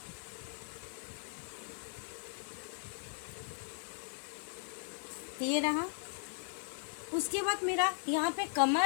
ये रहा। उसके बाद मेरा यहाँ पे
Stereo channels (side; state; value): right; silent; 53 dB below the other